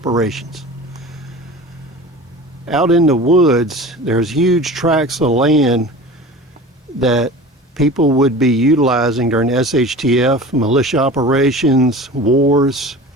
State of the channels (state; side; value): normal; both; correlation 0.37